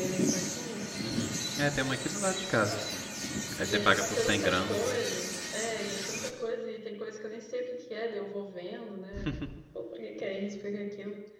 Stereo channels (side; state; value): both; identical; correlation 1.00